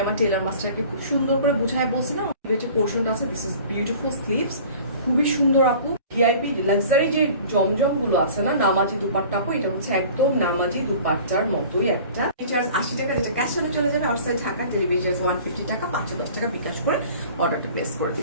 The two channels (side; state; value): both; inverted; correlation -0.45